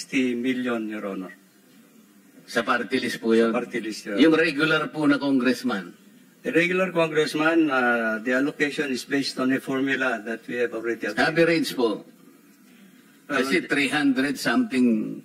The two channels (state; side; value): identical; both; correlation 1.00